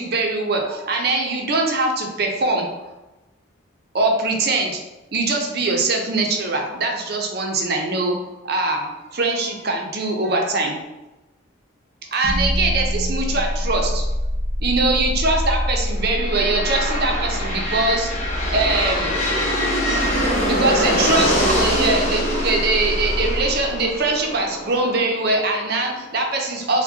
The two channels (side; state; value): both; normal; correlation 0.13